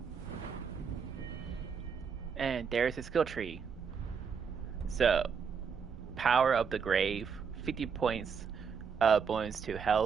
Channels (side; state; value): left; quieter; 6.3 dB